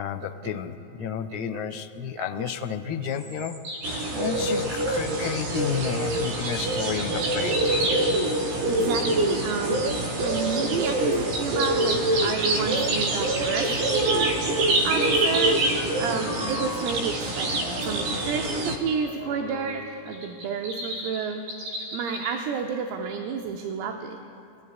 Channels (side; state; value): left; late; 17 ms